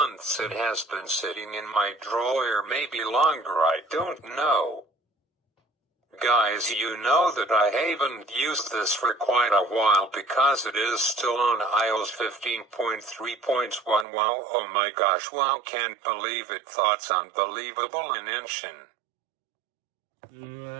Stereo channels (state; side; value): drops out; left; at 14.1 s